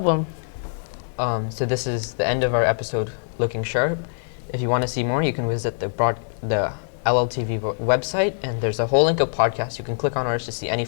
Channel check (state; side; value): silent; right; 63 dB below the other